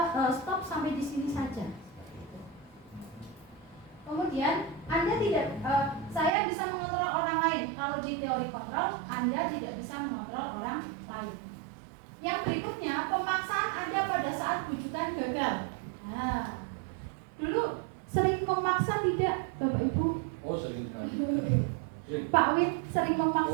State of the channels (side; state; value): left; drops out; at 6.3 s